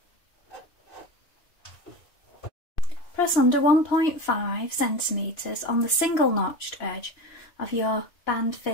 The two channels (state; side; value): late; right; 2.9 ms